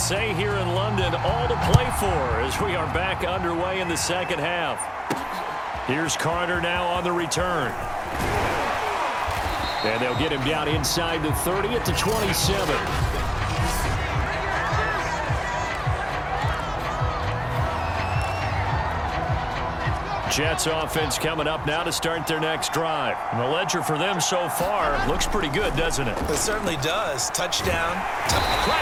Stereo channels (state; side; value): identical; both; correlation 1.00